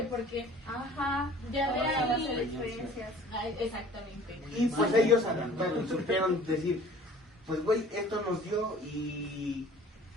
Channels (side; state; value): both; normal; correlation 0.48